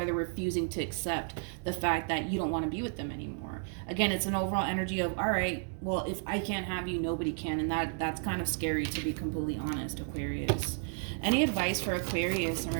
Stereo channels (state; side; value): silent; left; 56 dB below the other